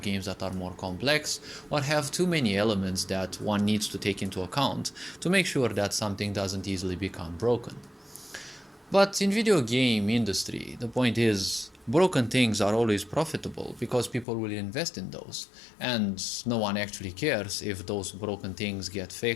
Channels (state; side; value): drops out; right; at 14.2 s